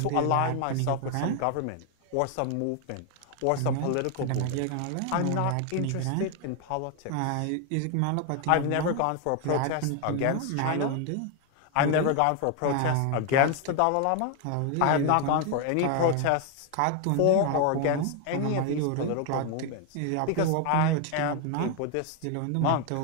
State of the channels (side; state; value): both; different; correlation 0.01